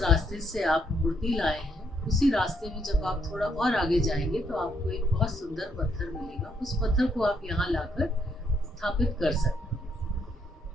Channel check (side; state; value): both; normal; correlation 0.74